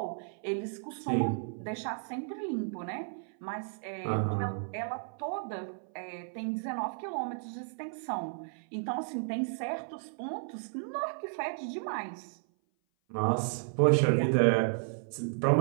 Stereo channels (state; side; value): silent; left; 56 dB below the other